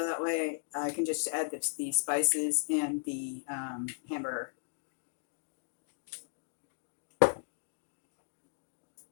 that way I can just add the spices and the hamburger.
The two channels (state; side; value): silent; right; digital silence